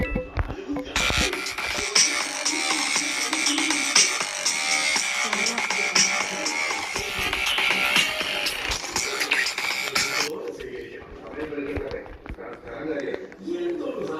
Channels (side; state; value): both; identical; correlation 1.00